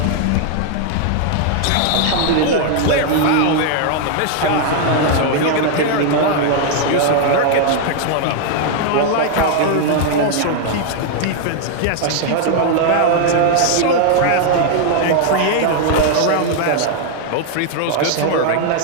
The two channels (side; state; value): both; different; correlation 0.00